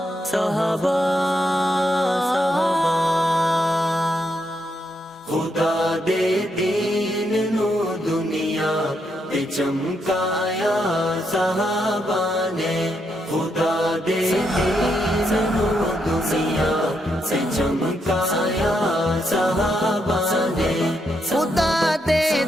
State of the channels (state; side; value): normal; both; correlation 0.80